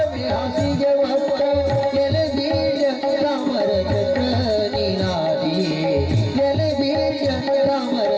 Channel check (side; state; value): both; identical; correlation 1.00